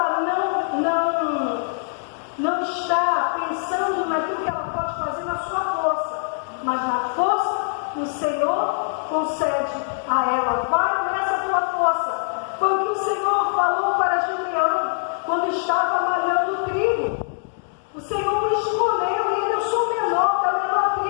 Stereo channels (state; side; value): silent; right; digital silence